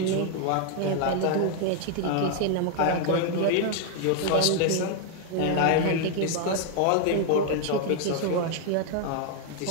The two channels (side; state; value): both; different; correlation 0.00